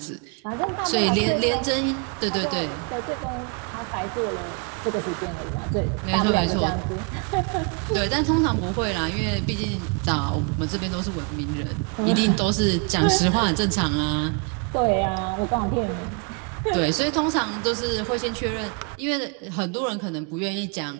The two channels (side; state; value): left; quieter; 34.5 dB